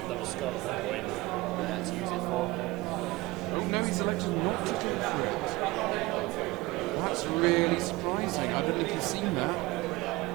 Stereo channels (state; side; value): quieter; left; 20.9 dB